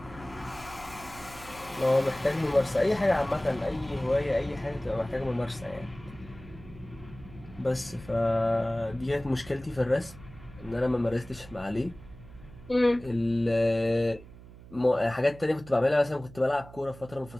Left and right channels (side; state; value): right; noise; hum, 18 dB below the sound